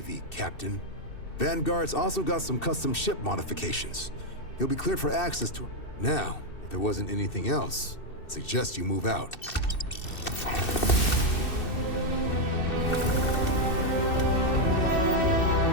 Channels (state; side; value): late; right; 2.6 ms